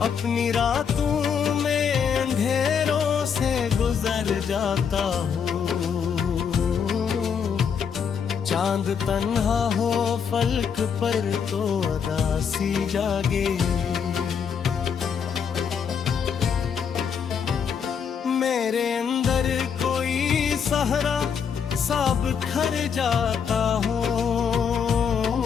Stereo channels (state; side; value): quieter; right; 7.0 dB